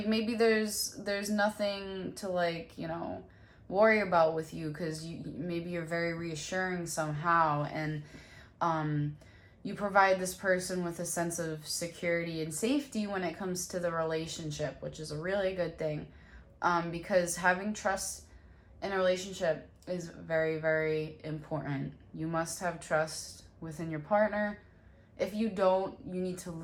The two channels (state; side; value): identical; both; correlation 1.00